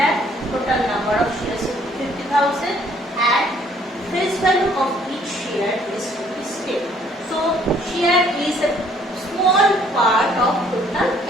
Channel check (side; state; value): both; normal; correlation 0.62